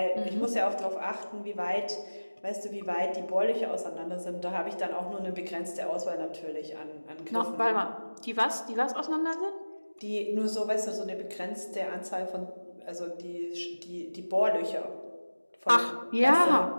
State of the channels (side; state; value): both; inverted; correlation -1.00